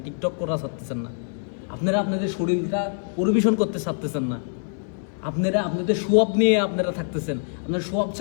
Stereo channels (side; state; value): right; silent; 56 dB below the other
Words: টিকটক করা ছাড়তেছেন না, আপনারা আপনাদের শরীরটা পরিবেশন করতে ছাড়তেছেন না, আপনারা আপনাদের সোয়াব নিয়ে আপনারা থাকতেছেন। আপনার সোয়াব